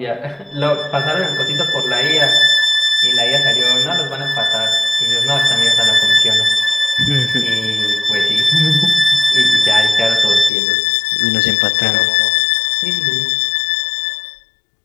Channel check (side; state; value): right; drops out; at 10.5 s